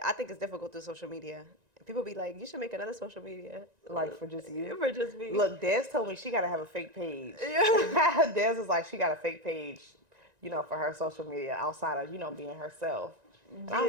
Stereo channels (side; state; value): left; late; 1.9 ms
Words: I think it's difficult through social media. People be like, you should make another social media. Like, for just you? For just me. Look, Des told me she got to have a fake page. Des is like, she got a fake page, you know, for her social media outside of, you know, being herself. And I